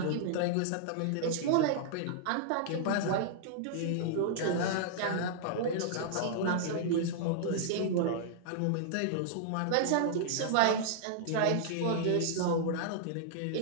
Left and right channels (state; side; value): different; both; correlation -0.01